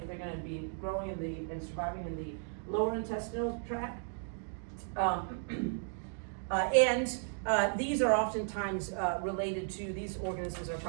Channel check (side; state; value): left; silent; 54 dB below the other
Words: they're going to be growing and surviving in the lower intestinal tract. These are oftentimes these organisms are